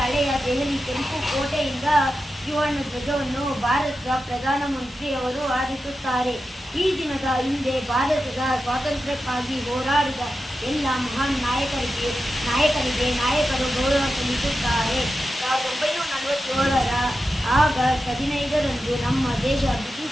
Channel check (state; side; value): normal; both; correlation 0.91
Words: ಹಳೆಯ ದೆಹಲಿ ಕೆಂಪು ಕೋಟೆಯಿಂದ ತ್ರಿವರ್ಣ ಧ್ವಜವನ್ನು ಭಾರತದ ಪ್ರಧಾನಮಂತ್ರಿಯವರು ಹಾರಿಸುತ್ತಾರೆ. ಈ ದಿನದ ಹಿಂದೆ ಭಾರತದ ಸ್ವಾತಂತ್ರ್ಯಕ್ಕಾಗಿ ಹೋರಾಡಿದ ಎಲ್ಲ ಮಹಾನ್ ನಾಯಕರಿಗೆ ನಾಯಕರು ಗೌರವ ಸಲ್ಲಿಸುತ್ತಾರೆ. 1947 ಆಗಸ್ಟ್ 15ರಂದು ನಮ್ಮ ದೇಶ